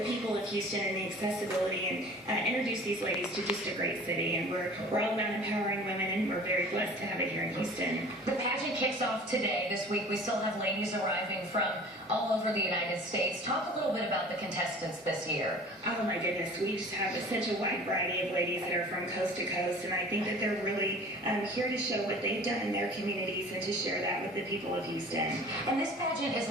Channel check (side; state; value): both; normal; correlation 0.44